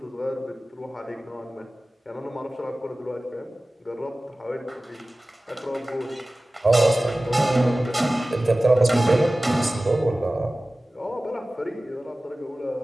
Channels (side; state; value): both; normal; correlation 0.97